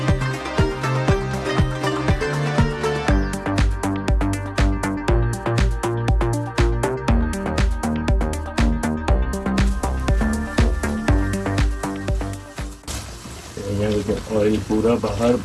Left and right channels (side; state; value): both; identical; correlation 1.00